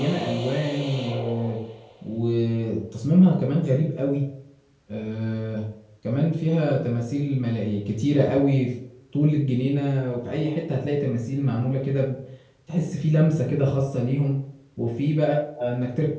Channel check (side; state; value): both; identical; correlation 1.00